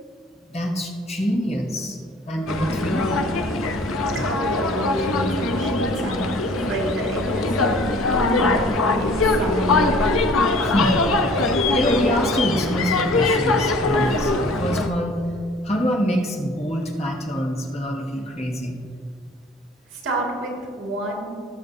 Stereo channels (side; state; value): both; normal; correlation 0.51